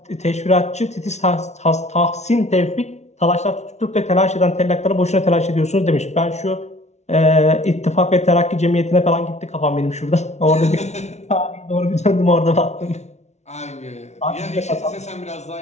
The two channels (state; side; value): late; right; 0.32 ms